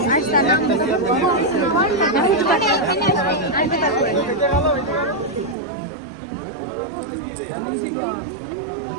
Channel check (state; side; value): drops out; left; at 5.6 s